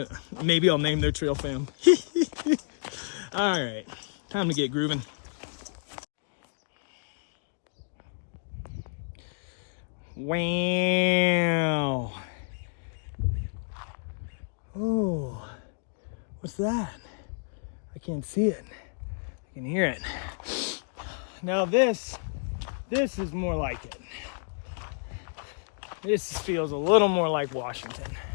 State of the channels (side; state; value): right; silent; digital silence